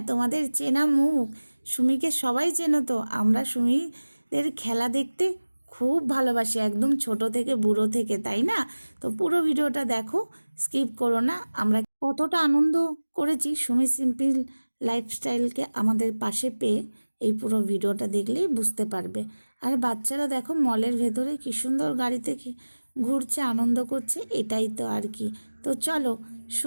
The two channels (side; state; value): both; inverted; correlation -1.00